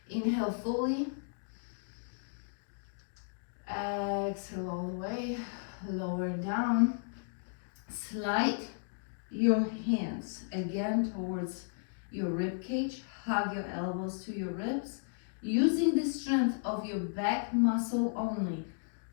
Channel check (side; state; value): right; silent; digital silence